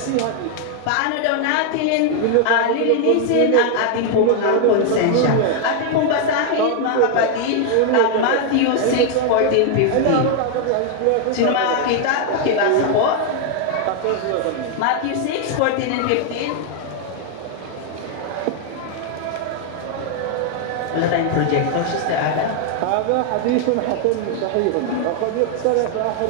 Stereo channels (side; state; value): both; different; correlation 0.00